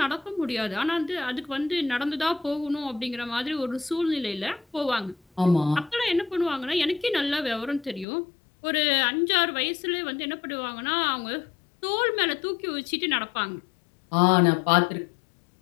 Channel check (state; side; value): drops out; right; at 8.1 s